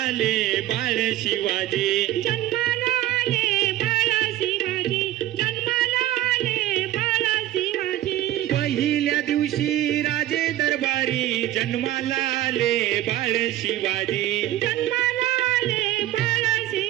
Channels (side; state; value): left; quieter; 14.0 dB